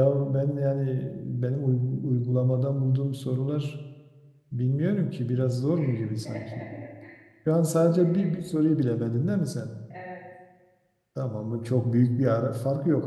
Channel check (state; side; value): identical; both; correlation 1.00